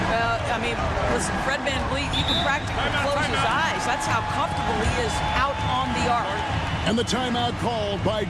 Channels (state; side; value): identical; both; correlation 1.00